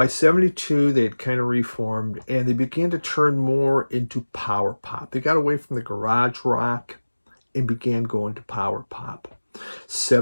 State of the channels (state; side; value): inverted; both; correlation -1.00